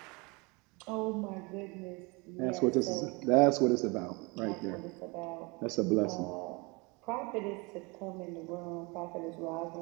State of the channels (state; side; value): quieter; left; 27.8 dB